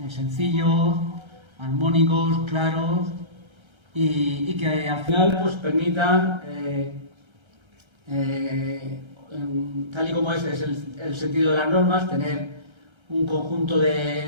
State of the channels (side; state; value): left; late; 1.3 ms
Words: sencillos, armónicos, claros y que al final pues, permitan, tal y como es el sentido de las normas, tener un conjunto